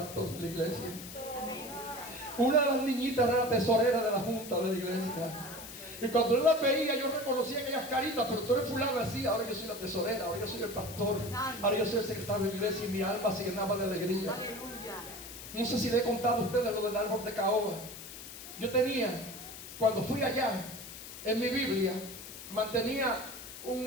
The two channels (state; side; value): noise; left; hiss, 12 dB below the sound